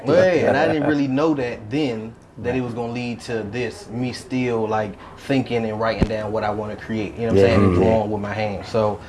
and I didn't really know that then, that it was gonna lead to this, me still like thinking and writing down what I want to create, you know what I'm saying, and drawing with my hands. So,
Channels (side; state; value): both; identical; correlation 1.00